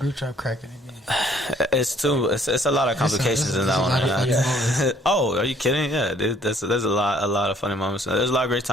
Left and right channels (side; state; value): both; normal; correlation 0.61